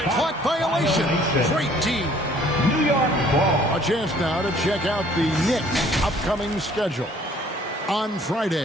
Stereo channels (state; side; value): normal; both; correlation 0.58